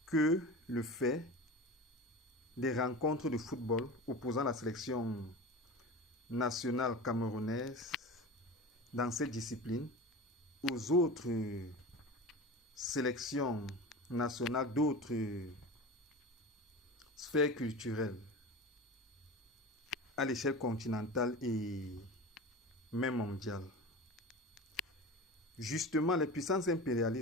que le fait des rencontres de football opposant la sélection nationale camerounaise dans cette discipline aux autres sélections nationales d'autres sphères culturelles à l'échelle continentale et même mondiale. Justement, les puissances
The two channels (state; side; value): normal; both; correlation 0.31